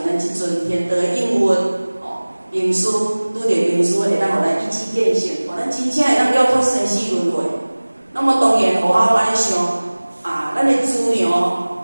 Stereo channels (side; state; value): both; inverted; correlation -1.00